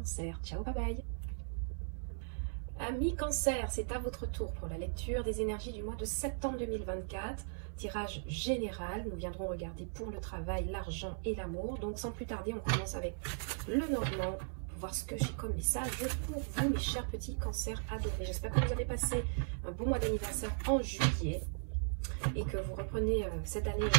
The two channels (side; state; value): left; silent; 53 dB below the other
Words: Ciao, bye bye. Amis Cancer, c'est à votre tour pour la lecture des énergies du mois de septembre 2024. Tirage général, nous viendrons regarder pour le travail, l'argent et l'amour. Donc sans plus tarder, on commence avec le normand pour voir ce que j'ai comme message pour vous, mes chers petits cancers adorés. J'espère que vous avez passé un bon mois d'anniversaire en juillet et que vous reprenez cette année